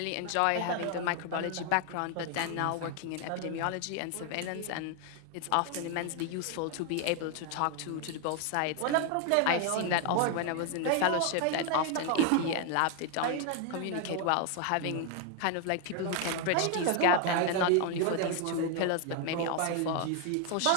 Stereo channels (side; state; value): both; different; correlation 0.01